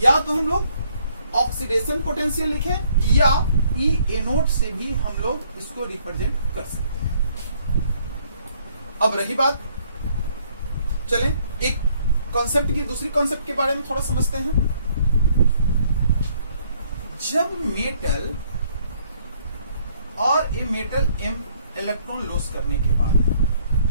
या तो हम लोग ऑक्सीडेशन पोटेंशियल लिखें या E एनोड से भी हम लोग इसको रिप्रेजेंट कर सकते हैं। अब रही बात, चलें एक कॉन्सेप्ट की दूसरी कॉन्सेप्ट के बारे में थोड़ा समझते हैं। जब मेटल और ये मेटल M इलेक्ट्रॉन लॉस करने के बाद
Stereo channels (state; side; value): inverted; both; correlation -0.65